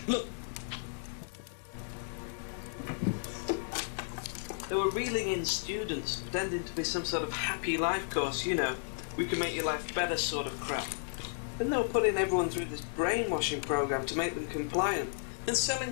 Look. They were reeling in students, pretending to be some sort of happy life course, you know. We can make your life better sort of crap. Then they were putting everyone through this brainwashing program to make them compliant, and selling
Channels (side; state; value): right; silent; 55 dB below the other